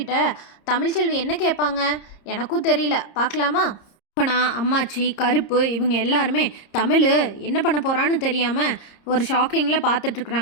தமிழ்ச்செல்வி என்ன கேட்பாங்க எனக்கும் தெரியல, பார்க்கலாமா? அப்பனா அம்மாச்சி கருப்பு இவங்க எல்லாருமே தமிழ் என்ன பண்ண போகிறான்னு தெரியாமல் ஒரு ஷாக்கிங்கில்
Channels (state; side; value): late; right; 30 ms